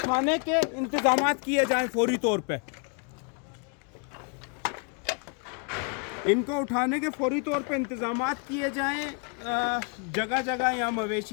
के इंतजाम किए जाएँ फौरी तौर पर। इनको उठाने के फौरी तौर पे इंतज़ामात किए जाएँ। जगह जगह यहाँ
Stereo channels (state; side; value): quieter; right; 38.3 dB